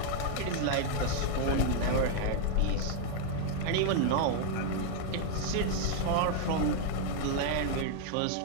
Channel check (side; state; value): both; different; correlation 0.00